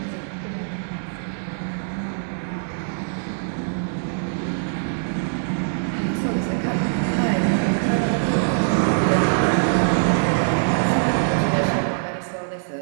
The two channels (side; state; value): left; silent; 63 dB below the other